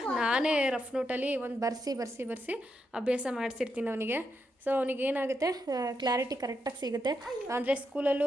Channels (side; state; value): both; normal; correlation 0.83